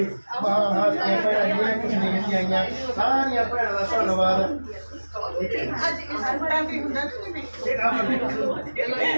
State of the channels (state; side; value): inverted; both; correlation -1.00